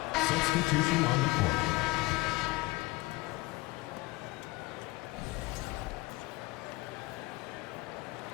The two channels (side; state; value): right; quieter; 21.1 dB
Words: Substitution on the court.